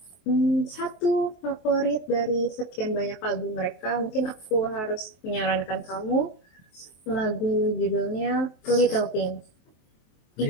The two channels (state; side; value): late; right; 23 ms